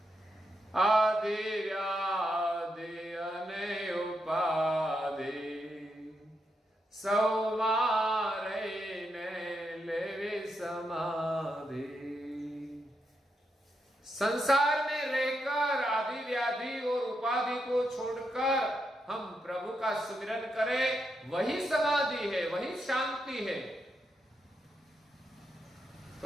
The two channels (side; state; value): both; normal; correlation 0.83